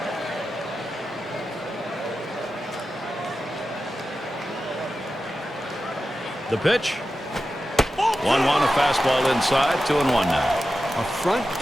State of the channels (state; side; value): normal; both; correlation 0.92